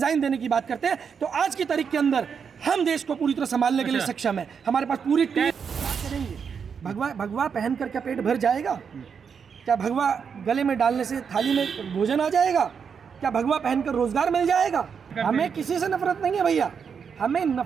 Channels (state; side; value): quieter; left; 6.6 dB